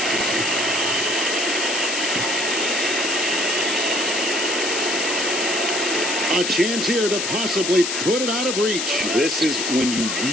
A chance here to possibly put it out of reach. This is when you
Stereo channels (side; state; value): left; noise; hiss, 1 dB below the sound